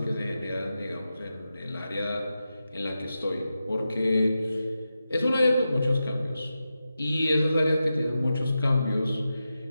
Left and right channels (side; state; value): both; inverted; correlation -0.91